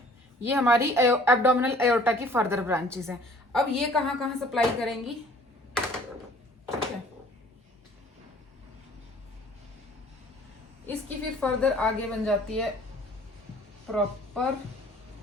ये हमारी एब्डोमिनल एयोर्टा की फर्दर ब्रांचेस हैं। अब ये कहाँ कहाँ सप्लाई करेंगी? ठीक है, इसकी फिर फर्दर आगे बन जाती है प्रॉपर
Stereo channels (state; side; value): normal; both; correlation 0.53